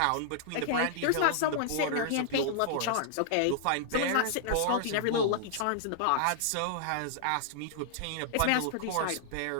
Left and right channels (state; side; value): different; both; correlation -0.01